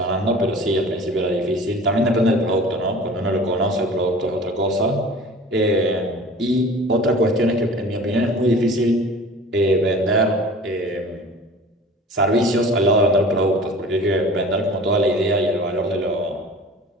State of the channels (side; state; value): both; normal; correlation 0.42